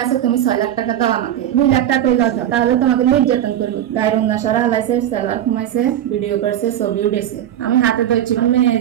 আছে তুমি 6 লাখ টাকা দাও আমাকে 2 লাখ টাকা পেয়ে যাও তাহলে তোমাকে নির্যাতন করবো দারুণ নশরা লাইছে সালোয়ার কমাইছে ভিডিও করছে ছবি উঠেছে আমি হাতে ধরছি মেয়ের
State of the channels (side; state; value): left; quieter; 11.2 dB